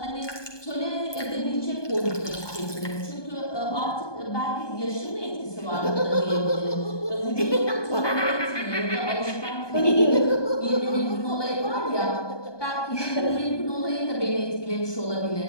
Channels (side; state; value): right; late; 1.2 ms